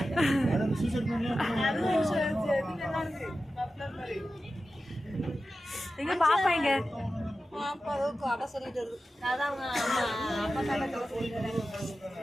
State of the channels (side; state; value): both; normal; correlation 0.93